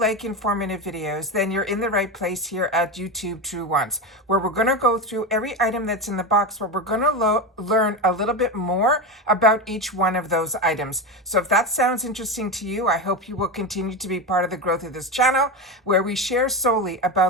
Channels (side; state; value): both; normal; correlation 0.18